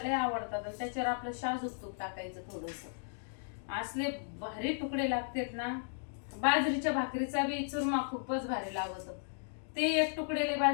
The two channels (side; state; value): right; silent; digital silence